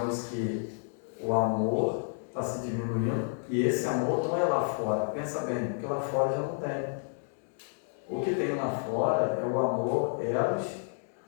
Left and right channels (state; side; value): silent; right; digital silence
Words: que o amor está se diminuindo e esse amor não é lá fora. Pensa bem, porque lá fora já não tem. O que tem lá fora é o amor eros,